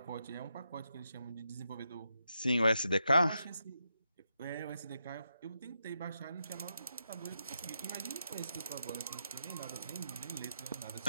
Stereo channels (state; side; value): inverted; both; correlation -0.84